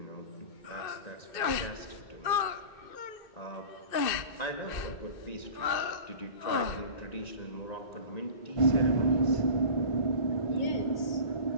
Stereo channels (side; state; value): right; late; 2.6 ms